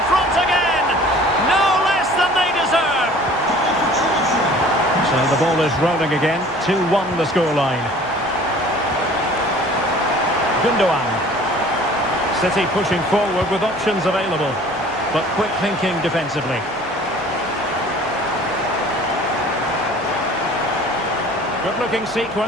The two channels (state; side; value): normal; both; correlation 0.48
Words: front again. No less than they deserve. So the ball is rolling again. 2-1 the scoreline. Gundogan. City pushing forward with options available, but quick thinking defensively. Good looking